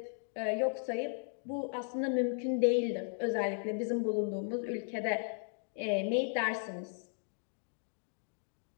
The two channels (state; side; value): silent; right; 54 dB below the other